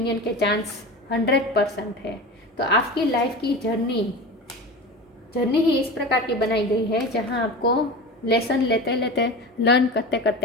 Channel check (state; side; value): normal; both; correlation 0.31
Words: के चांस 100% है। तो आपकी लाइफ की जर्नी ही इस प्रकार की बनाई गई है जहां आपको लेसन लेते लेते, लर्न करते